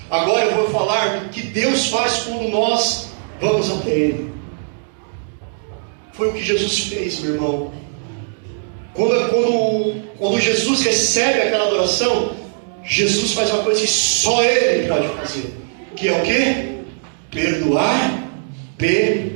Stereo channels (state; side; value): silent; left; digital silence